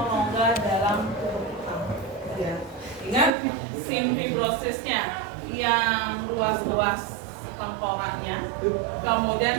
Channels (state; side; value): drops out; left; at 3.4 s